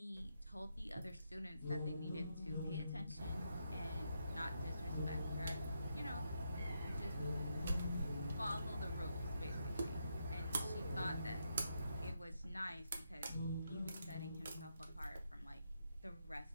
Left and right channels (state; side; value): inverted; both; correlation -0.81